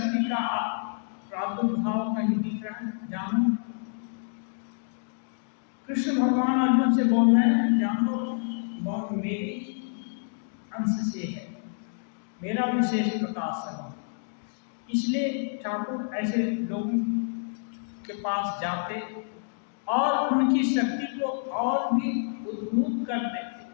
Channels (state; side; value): silent; right; digital silence